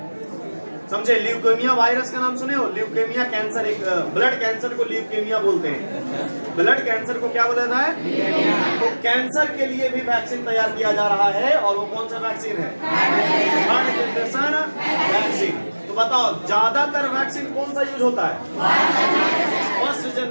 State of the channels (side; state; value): both; inverted; correlation -1.00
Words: समझे? ल्यूकेमिया वायरस का नाम सुने हो? ल्यूकेमिया कैंसर, एक ब्लड कैंसर को ल्यूकेमिया बोलते हैं। ब्लड कैंसर को क्या बोला जाता है? तो कैंसर के लिए भी वैक्सीन तैयार किया जा रहा है, और वो कौन सा वैक्सीन है? Third generation vaccine. तो बताओ ज्यादातर वैक्सीन कौन सा यूज होता है? फर्स्ट